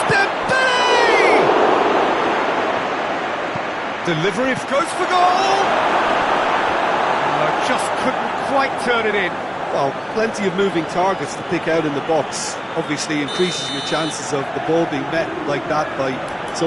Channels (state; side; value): identical; both; correlation 1.00